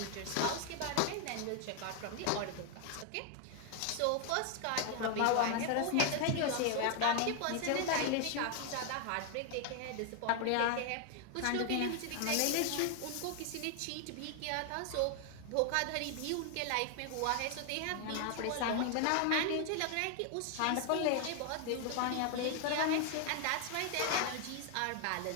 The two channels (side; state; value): both; different; correlation 0.00